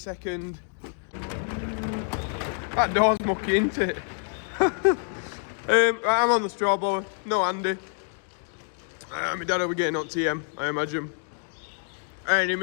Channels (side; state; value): right; silent; 55 dB below the other